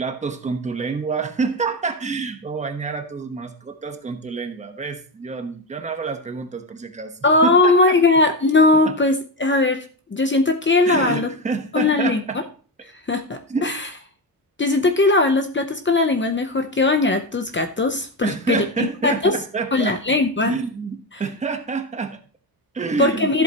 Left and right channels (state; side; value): normal; both; correlation 0.15